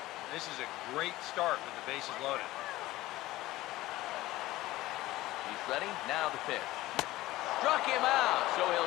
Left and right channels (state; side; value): quieter; right; 17.2 dB